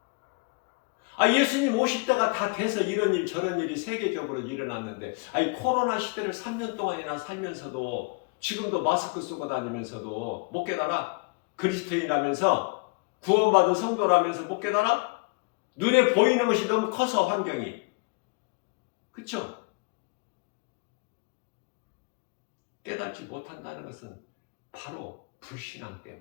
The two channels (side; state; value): right; quieter; 29.8 dB